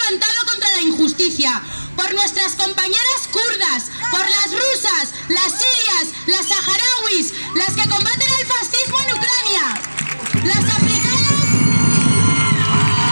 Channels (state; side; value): inverted; both; correlation -1.00